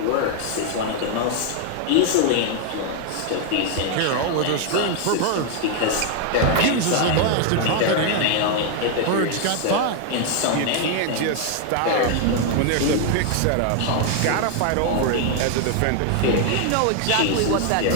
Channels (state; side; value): different; both; correlation 0.00